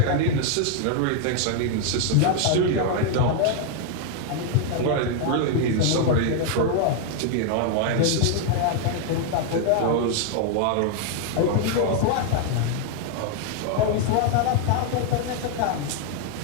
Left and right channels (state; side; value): different; both; correlation 0.00